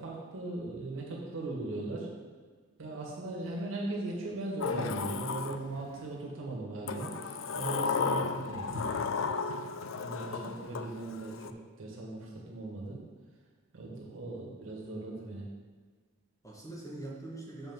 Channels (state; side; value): normal; both; correlation 0.13